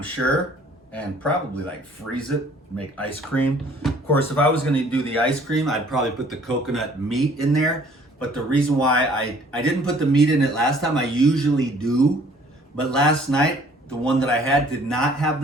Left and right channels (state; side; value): normal; both; correlation 0.57